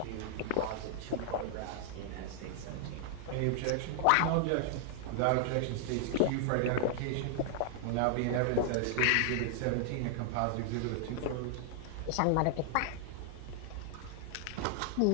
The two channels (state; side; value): different; both; correlation 0.00